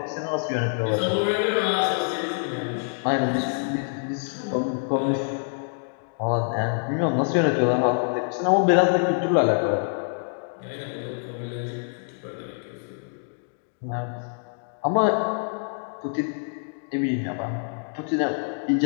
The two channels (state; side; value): silent; right; digital silence